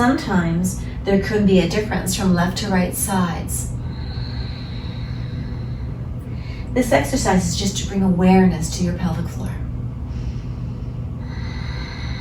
there could be a difference from left to right sides. This exercise is just to bring awareness to your pelvic floor.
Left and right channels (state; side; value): identical; both; correlation 1.00